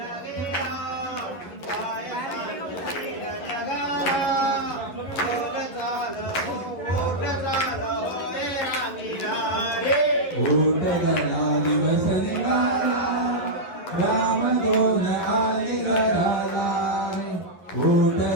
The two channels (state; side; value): late; right; 11 ms